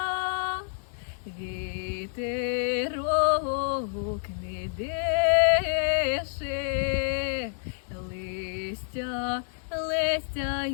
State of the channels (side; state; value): right; silent; digital silence